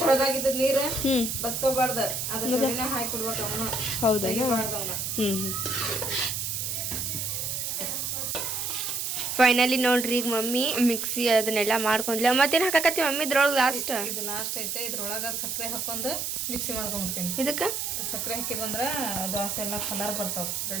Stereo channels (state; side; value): noise; right; hiss, 2 dB below the sound